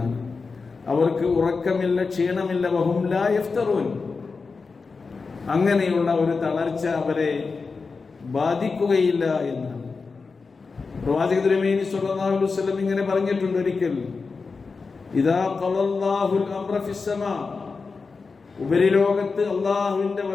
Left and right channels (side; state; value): right; quieter; 4.5 dB